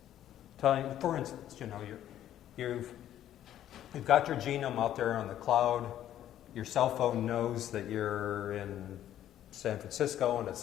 For instance, you've got your genome out there on the cloud. Your cell phone knows that you're in San Francisco and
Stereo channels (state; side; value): quieter; right; 11.7 dB